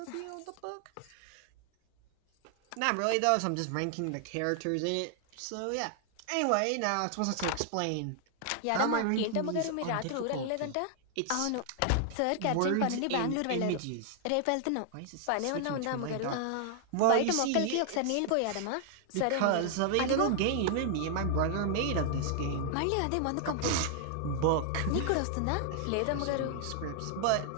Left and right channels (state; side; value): different; both; correlation 0.00